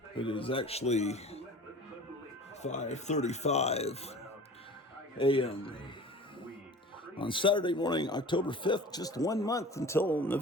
It is actually 5:35 a.m. on Saturday morning, October 5th, just 1 month until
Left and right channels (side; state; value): both; normal; correlation 0.41